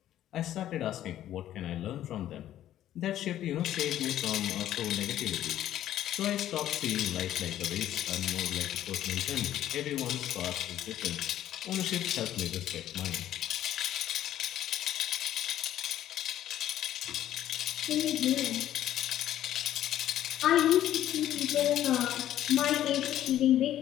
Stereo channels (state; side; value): quieter; right; 12.3 dB